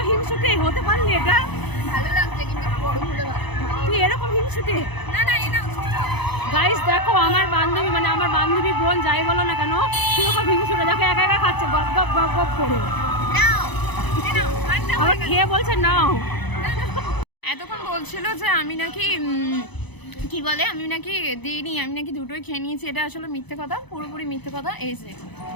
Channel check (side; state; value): right; late; 0.99 ms